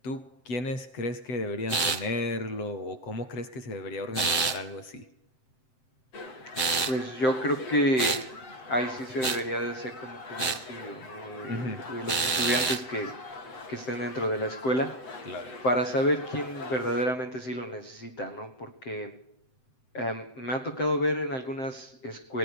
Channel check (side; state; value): right; late; 7.8 ms